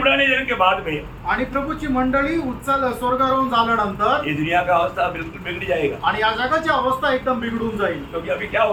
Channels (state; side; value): identical; both; correlation 1.00